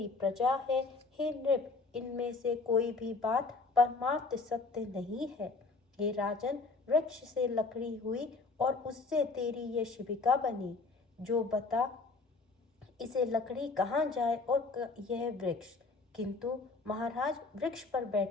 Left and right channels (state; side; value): quieter; right; 3.9 dB